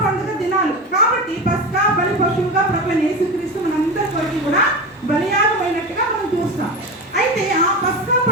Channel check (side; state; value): both; normal; correlation 0.24